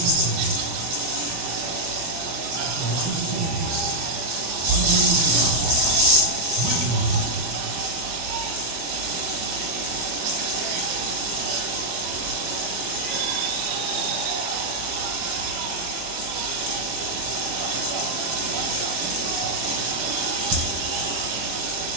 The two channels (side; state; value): left; late; 25 ms